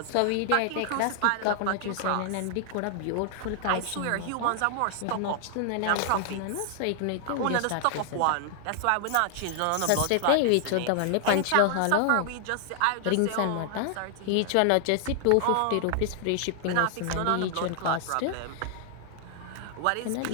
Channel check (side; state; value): both; different; correlation 0.00